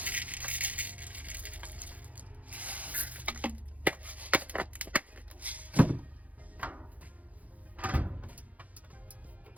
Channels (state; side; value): late; left; 0.073 ms